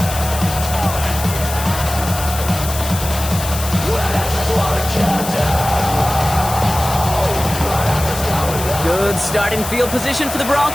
Good starting field position for the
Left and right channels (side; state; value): left; noise; hiss, 8 dB below the sound